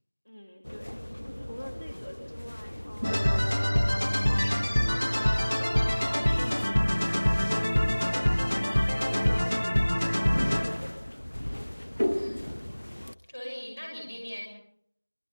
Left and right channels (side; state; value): both; inverted; correlation -1.00